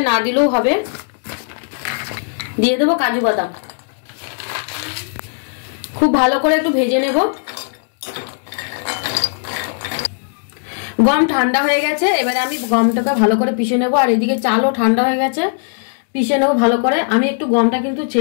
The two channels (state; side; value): silent; right; digital silence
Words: না দিলেও হবে। দিয়ে দেবো কাজু বাদাম। খুব ভালো করে একটু ভেজে নেব। গম ঠান্ডা হয়ে গেছে। এবারে আমি গমটাকে ভালো করে পিষে নেব। আর এদিকে চালও ঠান্ডা হয়ে গেছে, পিষে নেবো ভালো করে। আমি একটু গমটা কিন্তু